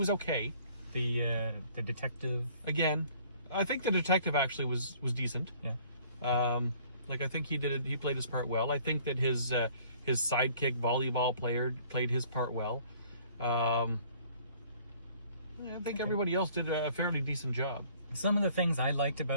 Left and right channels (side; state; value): both; inverted; correlation -0.56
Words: okay. The detective. Again, I think the detective actually was decent. Yeah. Like I think he played his part well. I think that his sidekick volleyball player played his part well. I think everybody else did a fairly decent job. Some of the things I liked